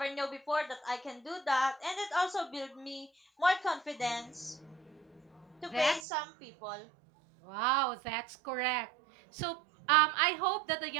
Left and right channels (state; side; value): drops out; left; at 6.0 s